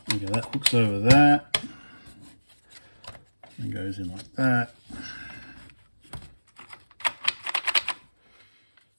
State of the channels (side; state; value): both; inverted; correlation -1.00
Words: Okay, that hooks over that. And goes in like that.